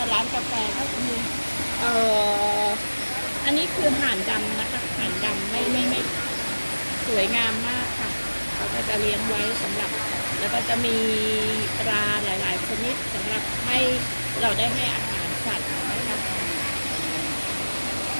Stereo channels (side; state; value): both; inverted; correlation -1.00